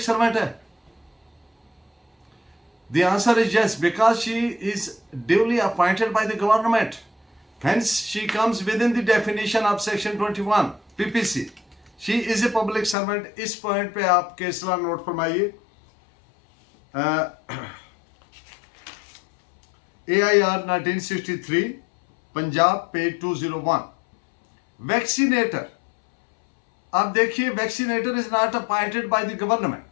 सर्वेंट है? The answer is yes, because she is duly appointed by the government. Hence, she comes within the definition of section 21 PPC. She is a public servant. इस point पे आप case law note फरमाइए। AIR 1963 Punjab page 201। Vaccinator, अब देखिए, vaccinator is not appointed by the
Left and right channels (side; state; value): right; drops out; at 13.0 s